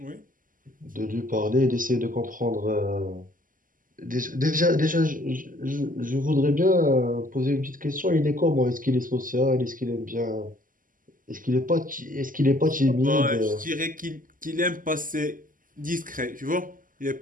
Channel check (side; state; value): left; late; 0.40 ms